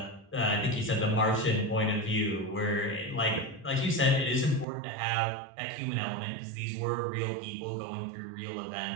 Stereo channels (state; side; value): drops out; left; at 4.7 s